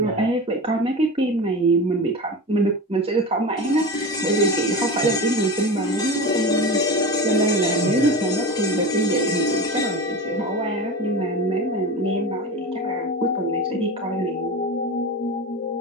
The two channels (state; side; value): normal; both; correlation 0.27